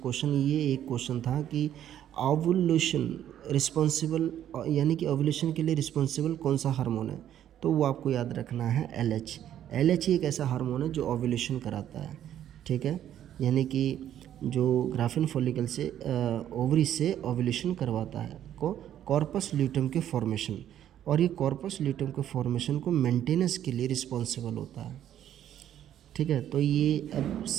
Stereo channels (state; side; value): quieter; left; 10.9 dB